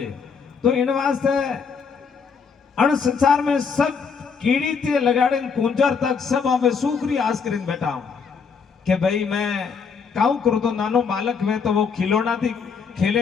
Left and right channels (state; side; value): quieter; right; 5.8 dB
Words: तो इन वास्ते अण संसार में सब कीड़ी ते लगाड़े कुंजर तक सब हमें सुखरी आस कर बैठा हूं कि भाई मैं काऊ करूं तो नानो बालक में तो वो खिलौना थी